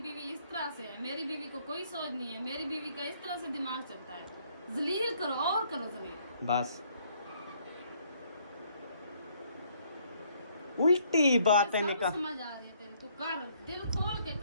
इस तरह से है, मेरी बीवी को कोई सोच नहीं है, मेरी बीवी का इस तरह से दिमाग चलता है। जलील करो और करो जलील। बस उल्टी बातें सब निकाल। समझ आ रही है तेरी, तू कर, दिल खोल के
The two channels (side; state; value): both; inverted; correlation -0.66